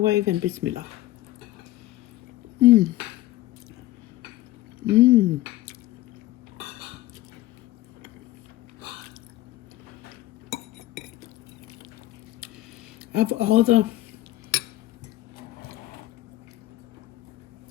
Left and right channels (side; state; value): right; quieter; 16.0 dB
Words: and bismillah. Of all the